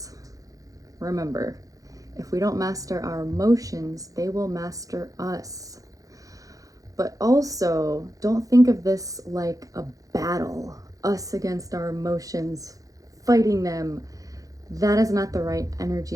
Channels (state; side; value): late; left; 0.17 ms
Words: remember, if we don't master our emotions, they will master us. But also, don't think of this like a battle, us against our emotions, fighting them. That is not the right